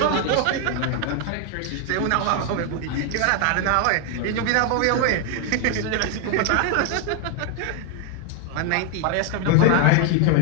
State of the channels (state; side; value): different; both; correlation 0.01